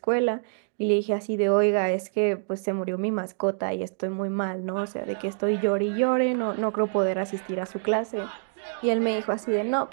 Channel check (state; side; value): silent; left; digital silence